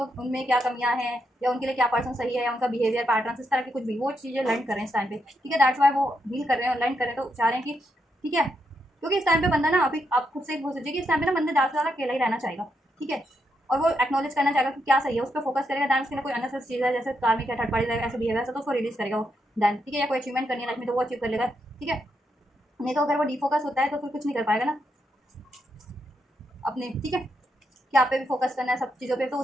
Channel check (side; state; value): both; normal; correlation 0.81